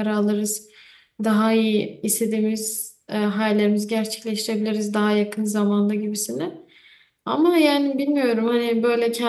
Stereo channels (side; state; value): both; identical; correlation 1.00